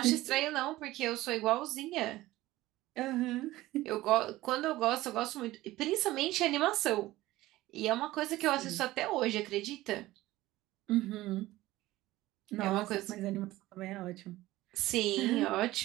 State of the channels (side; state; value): left; quieter; 17.1 dB